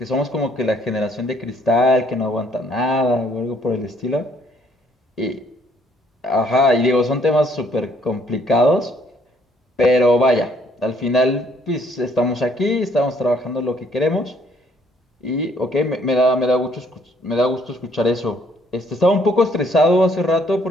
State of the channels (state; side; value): normal; both; correlation 0.65